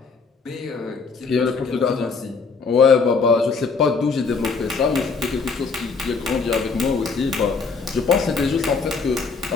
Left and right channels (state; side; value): quieter; right; 4.7 dB